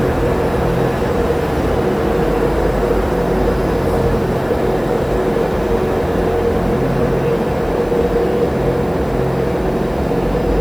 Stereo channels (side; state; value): left; noise; hiss, 27 dB below the sound